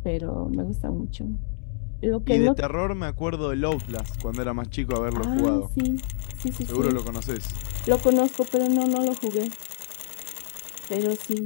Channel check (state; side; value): silent; right; digital silence